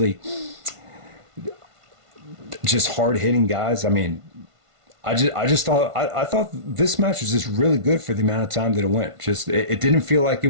just hard hitting guys. I mean, I thought this match was just really good for the amount of time that it went. It didn't feel like it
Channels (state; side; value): late; left; 1.5 ms